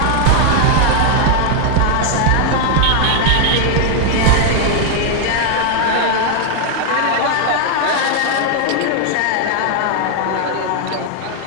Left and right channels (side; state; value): both; different; correlation 0.00